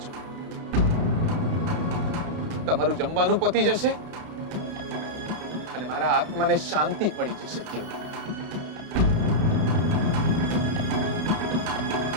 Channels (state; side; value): late; left; 31 ms